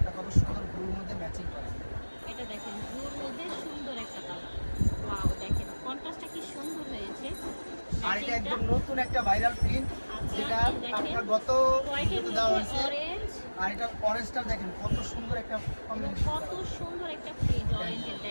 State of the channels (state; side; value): inverted; both; correlation -1.00